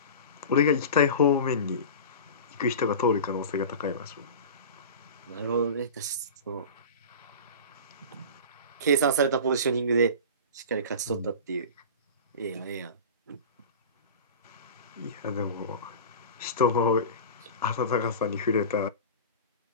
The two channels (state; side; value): inverted; both; correlation -0.33